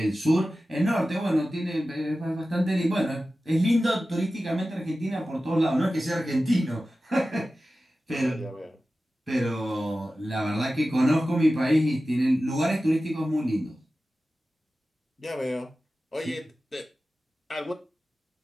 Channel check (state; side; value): normal; both; correlation 0.94